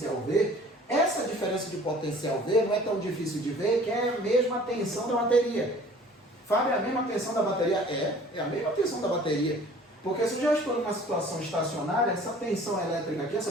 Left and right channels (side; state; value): both; normal; correlation 0.49